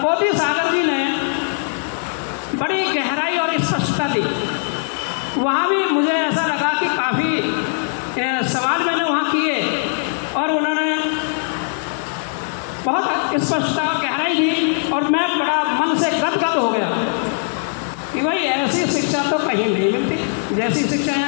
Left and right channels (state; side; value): silent; right; 64 dB below the other